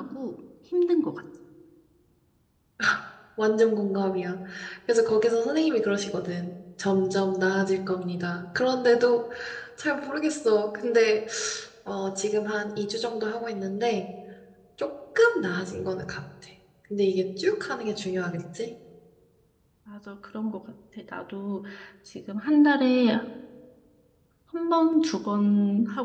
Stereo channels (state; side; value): identical; both; correlation 1.00